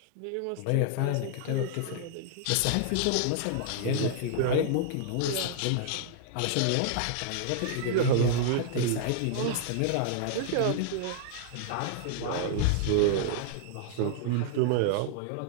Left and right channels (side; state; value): both; different; correlation -0.01